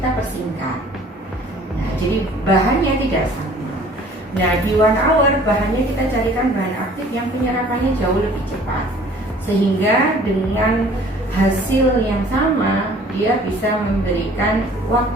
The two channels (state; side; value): normal; both; correlation 0.52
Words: persingkat. Nah, jadi bahannya tidak sama. Nah, di 1 hour bahannya kita carikan bahan aktif yang penyerapannya jauh lebih cepat, sehingga dengan hasil yang sama dia bisa memberikan